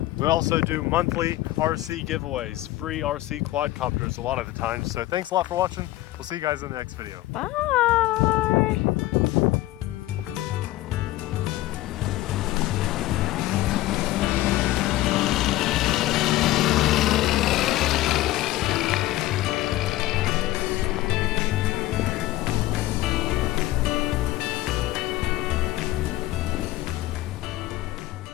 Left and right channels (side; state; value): right; quieter; 16.5 dB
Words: We also do monthly RC giveaways, free RC quadcopters a lot of the time. So thanks a lot for watching. We'll see you guys in the next video. Bye.